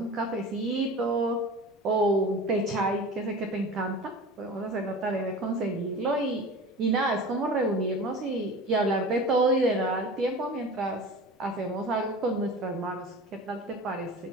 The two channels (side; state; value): both; normal; correlation 0.35